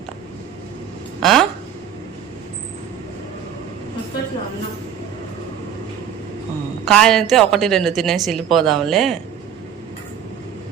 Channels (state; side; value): quieter; left; 8.8 dB